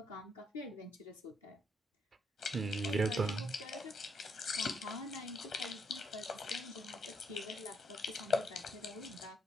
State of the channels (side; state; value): both; normal; correlation 0.75